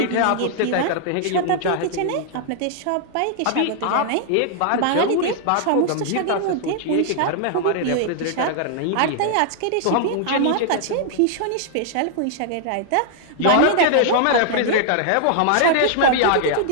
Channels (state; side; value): different; both; correlation -0.01